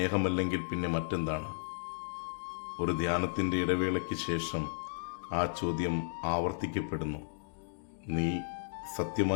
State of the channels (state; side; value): silent; right; digital silence